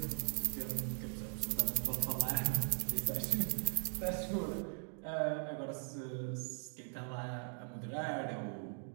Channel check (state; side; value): silent; left; 51 dB below the other